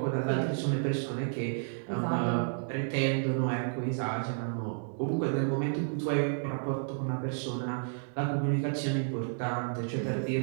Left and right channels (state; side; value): silent; left; digital silence